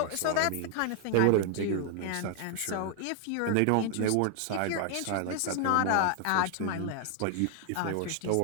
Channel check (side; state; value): both; different; correlation 0.00